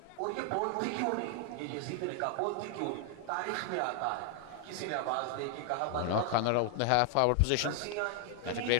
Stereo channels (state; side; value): different; both; correlation 0.00